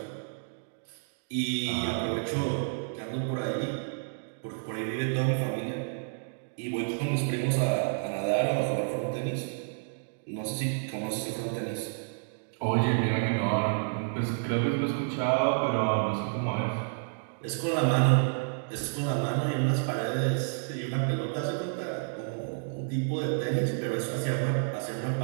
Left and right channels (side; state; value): left; silent; digital silence